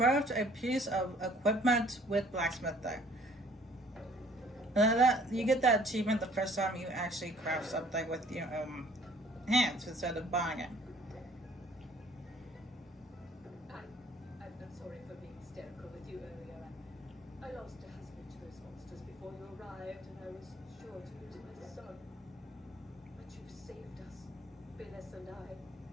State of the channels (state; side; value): normal; both; correlation 0.56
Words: a piece of equipment with blacksmithing. You get that achievement the first time you actually craft something with your hands instead of buying it. I'm sorry for being hysterical with you earlier. I lost a husband to those monsters before you arrived, and I was sure to lose my son. But you've saved us, Phyllis and